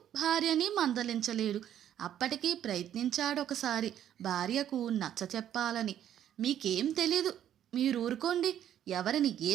భార్యని మందలించలేడు. అప్పటికీ ప్రయత్నించాడొకసారి భార్యకు నచ్చ చెప్పాలని. మీకేం తెలీదు, మీరూరుకోండి. ఎవరిని ఏ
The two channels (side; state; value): left; quieter; 10.6 dB